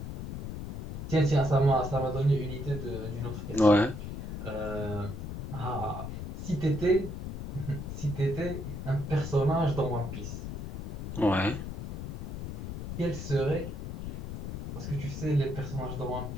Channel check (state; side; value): noise; left; rumble, 7 dB below the sound